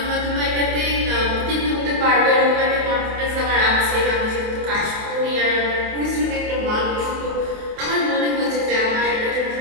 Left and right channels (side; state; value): left; late; 28 ms